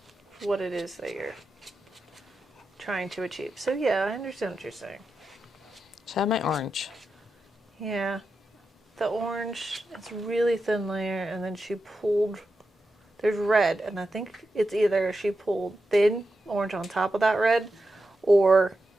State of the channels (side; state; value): both; normal; correlation 0.89